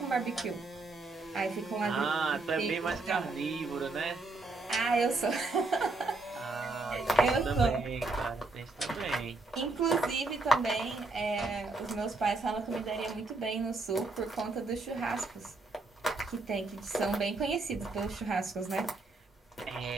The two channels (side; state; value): left; quieter; 3.3 dB